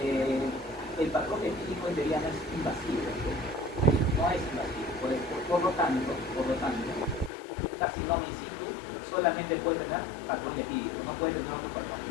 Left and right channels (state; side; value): drops out; right; at 7.3 s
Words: El patrón etílico en teoría no es invasivo, no es invasivo, por lo tanto, un carcinoma in situ solamente puede tener patrón etílico, no puede tener otro patrón